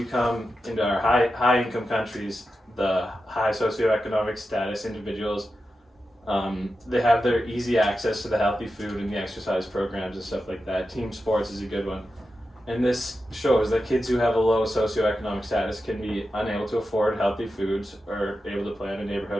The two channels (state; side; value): normal; both; correlation 0.91